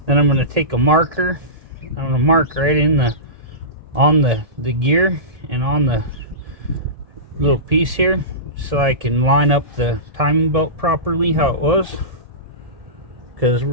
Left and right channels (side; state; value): left; late; 1.7 ms